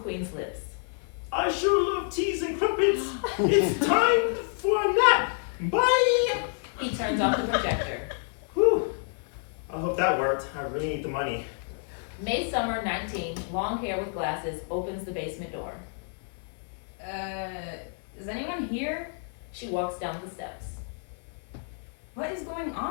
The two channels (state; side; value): silent; right; 57 dB below the other